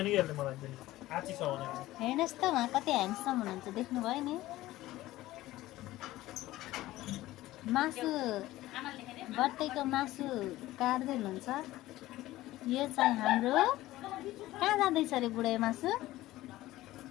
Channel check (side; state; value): right; quieter; 16.5 dB